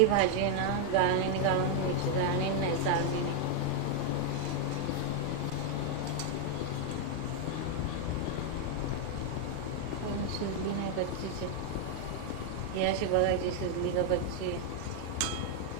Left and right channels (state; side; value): different; both; correlation 0.00